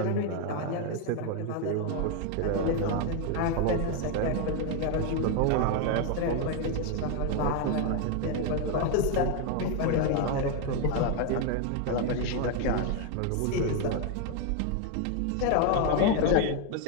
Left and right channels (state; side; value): different; both; correlation 0.01